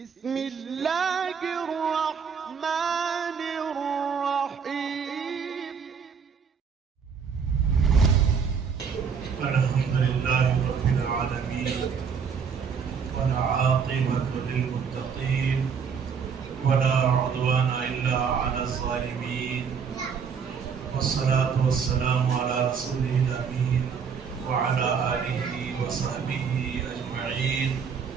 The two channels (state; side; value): quieter; left; 6.4 dB